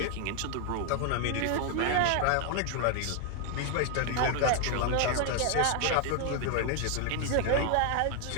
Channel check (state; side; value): different; both; correlation 0.00